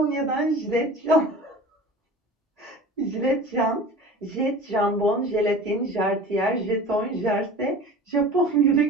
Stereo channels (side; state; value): both; normal; correlation 0.38